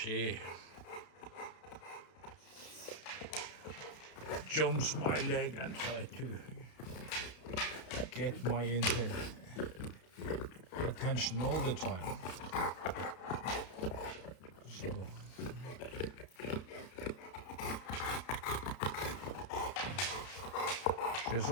jumps my leg and tries to get my attention all the time. So she's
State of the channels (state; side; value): late; right; 32 ms